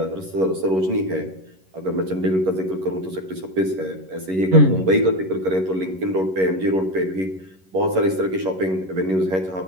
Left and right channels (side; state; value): left; late; 11 ms